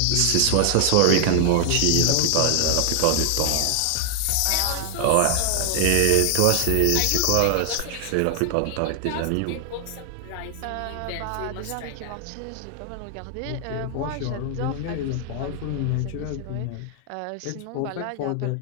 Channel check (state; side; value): different; both; correlation 0.00